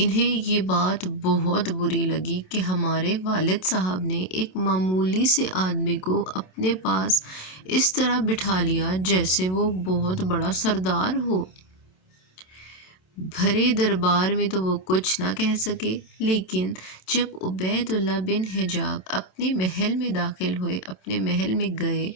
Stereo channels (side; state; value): right; late; 27 ms